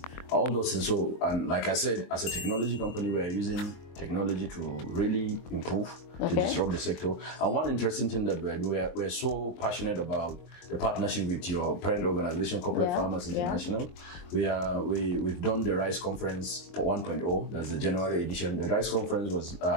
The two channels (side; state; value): right; late; 23 ms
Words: all those things. So, and like I said, as a technology company, we're using technology to really improve, to disrupt the sector. And one interesting thing that we're doing, we're so passionate about the partnership with your parent organization, Corporate Farmers International. We've done the Rice Conference 1.0, that's the January edition. The Rice Conference was,